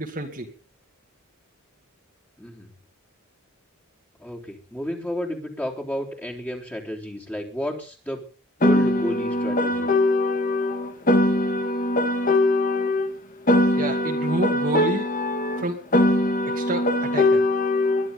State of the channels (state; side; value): normal; both; correlation 0.54